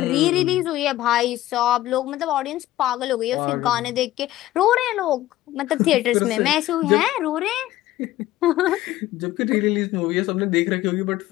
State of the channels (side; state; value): right; quieter; 15.2 dB